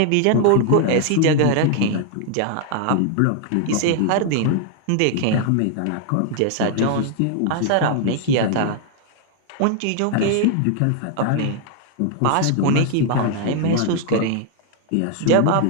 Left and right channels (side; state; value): both; different; correlation 0.00